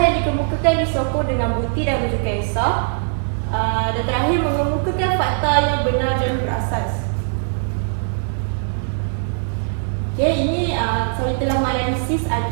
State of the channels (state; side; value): silent; left; digital silence